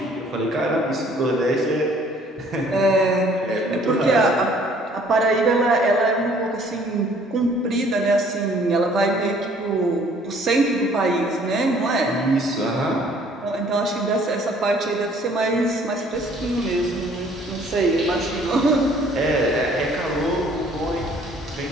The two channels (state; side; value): normal; both; correlation 0.58